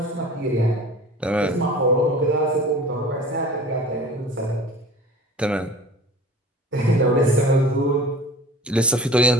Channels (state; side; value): normal; both; correlation 0.42